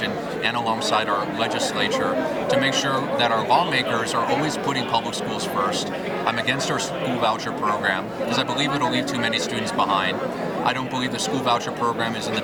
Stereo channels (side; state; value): both; identical; correlation 1.00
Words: and alongside our legislature, to make sure that our lawmakers are always putting public schools first. I'm against our school voucher program because I believe it'll leave too many students behind. I don't believe the school voucher program is in the